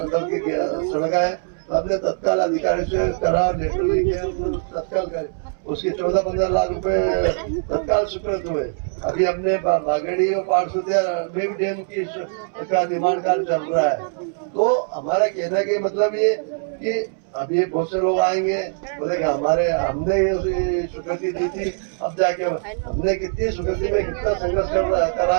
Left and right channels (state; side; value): silent; left; 64 dB below the other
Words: के सड़क है, तो हमने तत्काल अधिकारी से करा, लेटर लिखे, तत्काल करे, उसके 14-15 लाख रुपए तत्काल स्वीकृत हुए। अभी हमने बागेड़ी और पाठसुतिया में भी डैम की का निर्माण कार्य चल रहा है। तो हमारा कहने का मतलब ये कि अभी बहुत से लोग आएंगे, बोलेंगे हमने ये स्वीकृति दी थी, अब जाके हमने कितनी स्वीकृति में कितना संघर्ष करा